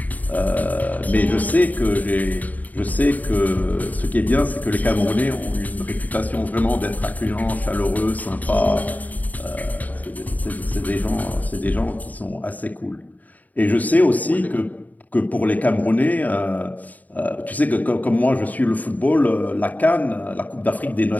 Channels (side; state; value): right; late; 0.077 ms